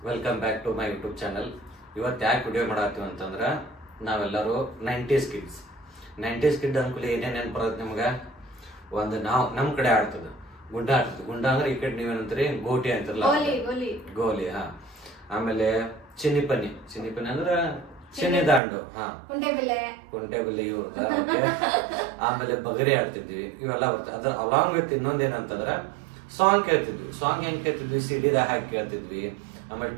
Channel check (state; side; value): drops out; left; at 18.6 s